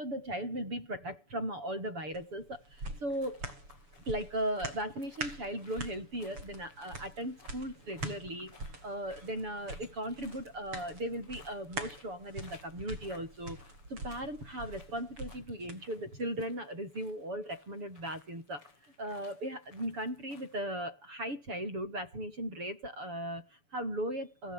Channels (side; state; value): left; late; 7.0 ms